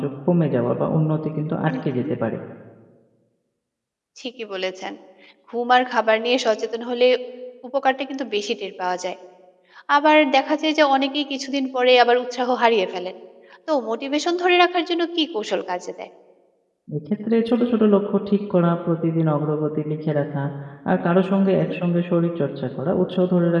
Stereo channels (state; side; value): identical; both; correlation 1.00